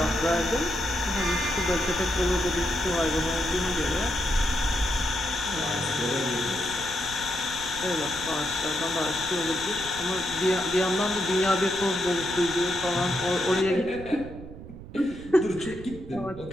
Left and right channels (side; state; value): right; noise; rumble, 14 dB below the sound